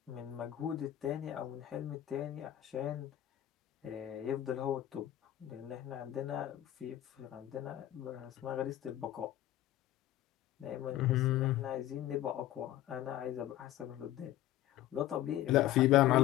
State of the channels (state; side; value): quieter; right; 13.3 dB